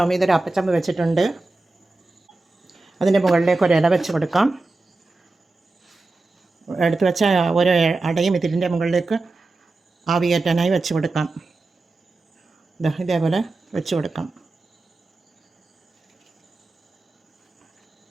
മീത ഒരു അപ്പച്ചമ്പ് വെച്ചിട്ടുണ്ട്. അതിൻ്റെ മുകളിലേക്ക് ഒരു ഇല വെച്ച് കൊടുക്കാം. എടുത്ത് വെച്ച ഓരോ അടയും ഇതിൻ്റെ മുകളിലേക്ക് ആവി കയറ്റാനായി വെച്ച് കൊടുക്കാം. ഇതേപോലെ വെച്ച് കൊടുക്കാം.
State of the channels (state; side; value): quieter; left; 3.3 dB